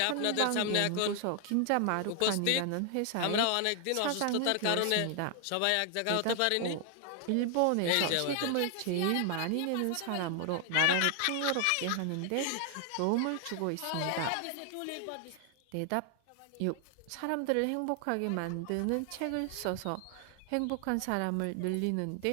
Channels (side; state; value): both; different; correlation 0.00